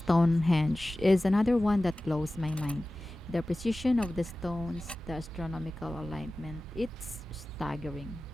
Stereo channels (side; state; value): both; normal; correlation 0.96